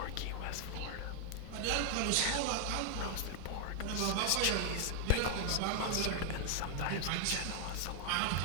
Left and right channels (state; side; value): different; both; correlation 0.00